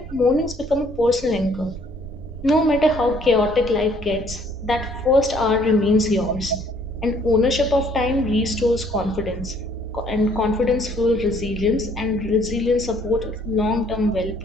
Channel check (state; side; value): normal; both; correlation 0.62